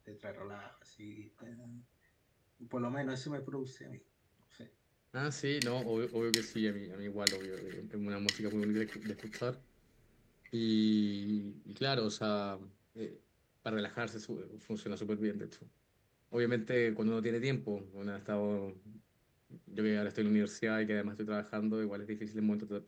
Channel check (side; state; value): both; identical; correlation 1.00